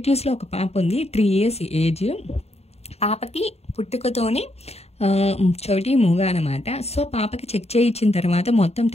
ఒక పాప ఉంది, 3 years ఏజ్. పాపకి పుట్టుకతోని చెవిటి మూగ అనమాట. సో పాపకి చెక్ చేయించిన తర్వాత, మొత్తం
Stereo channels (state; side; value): late; right; 0.30 ms